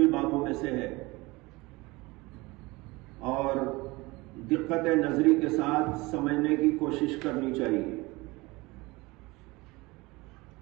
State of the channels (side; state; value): left; quieter; 22.7 dB